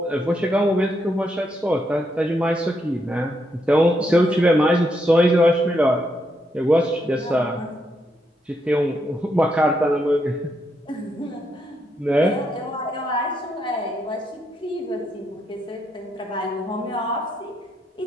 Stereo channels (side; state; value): both; normal; correlation 0.79